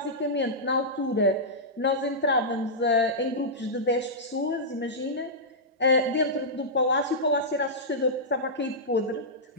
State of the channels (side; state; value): both; normal; correlation -0.12